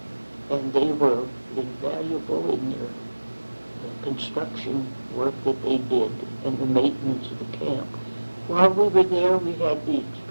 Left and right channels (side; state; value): both; inverted; correlation -1.00